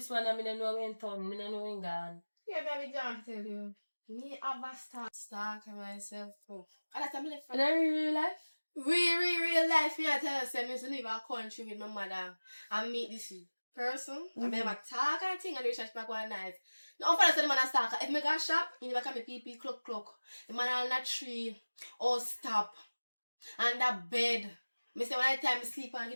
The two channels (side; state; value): both; inverted; correlation -1.00